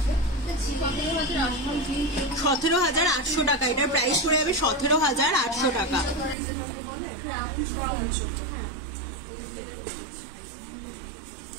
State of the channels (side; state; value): left; drops out; at 6.4 s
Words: 17,800 টাকা। এটার প্রাইস পড়ে যাবে 17,800 টাকা।